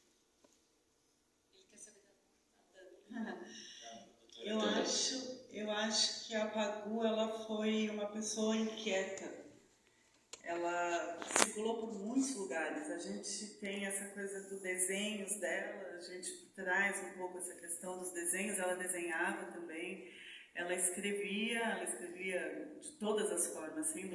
Eu acho que a Pagu, ela foi uma pessoa inquieta. Ela circulou por muitos lugares. A gente tem essa coisa dos desenhos dela, a gente traz um pouco essa questão dos desenhos. Ela desenhava também, ela escrevia de todas as formas,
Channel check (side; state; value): both; identical; correlation 1.00